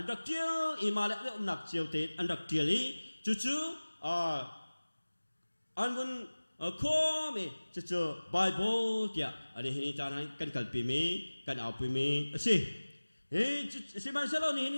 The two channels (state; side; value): inverted; both; correlation -1.00